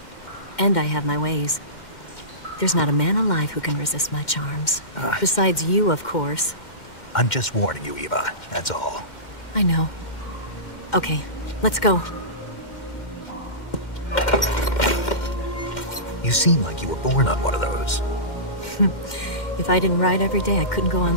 And I have my ways. There's not a man alive who can resist my charms. Besides you, of course. I'm just warning you, Eva. That's all. I know. Okay, let's go. You seem like you were born on one of those. If I didn't ride every day, I couldn't go on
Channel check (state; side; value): late; right; 2.1 ms